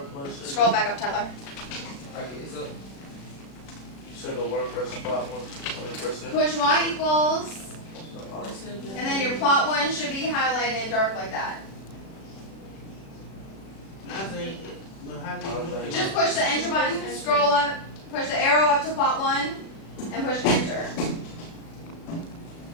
it? Scroll back up, Tyler. Okay, so You said go where? Press plot 1. I mean, press it. Push Y equals, Oh, and then your plot 1 should be highlighted dark like that. I think, but how do you do it? Just push the enter button, scroll up, push the arrow up to plot 1, and push enter.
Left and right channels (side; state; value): right; late; 36 ms